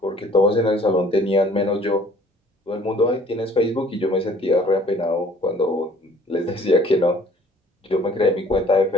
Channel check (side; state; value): both; normal; correlation 0.55